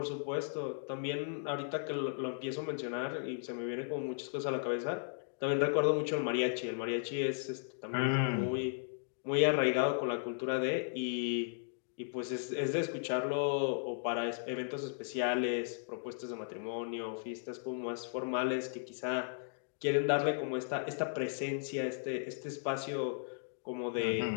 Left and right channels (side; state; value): right; silent; digital silence